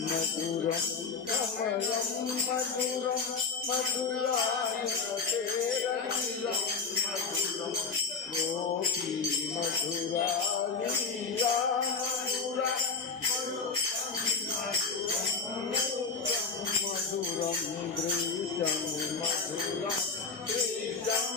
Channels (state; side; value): quieter; right; 4.9 dB